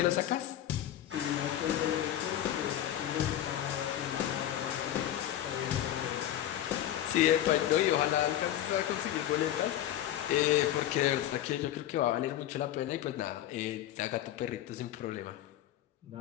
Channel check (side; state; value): right; quieter; 12.1 dB